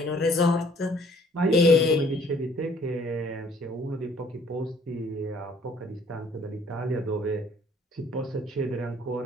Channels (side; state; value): both; normal; correlation 0.59